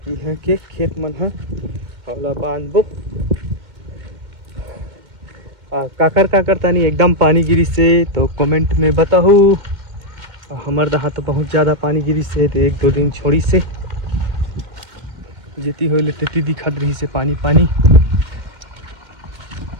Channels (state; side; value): late; left; 2.0 ms